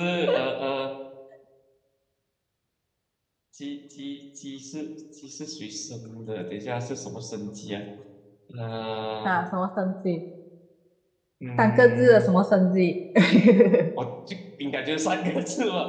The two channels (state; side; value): identical; both; correlation 1.00